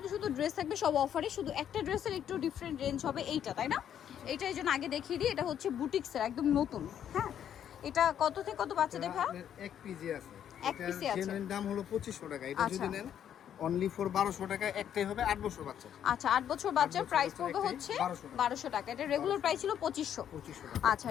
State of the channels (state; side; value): quieter; right; 9.6 dB